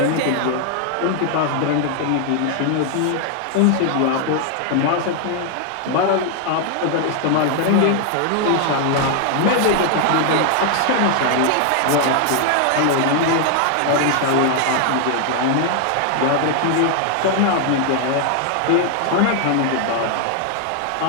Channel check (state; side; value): different; both; correlation 0.00